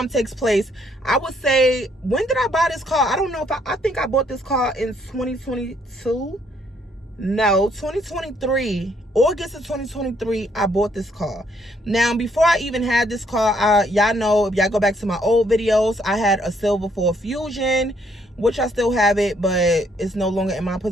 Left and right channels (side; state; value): both; normal; correlation 0.68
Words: takes place, I would say, when did I buy this car? I don't know if I think I bought this car in 2022. No, 2023. August of 2023, I bought this car. Now, before I even had this car, y'all know, if y'all go back to my old videos, I had a silver Ford Fusion, which I still have it, but it's no longer in my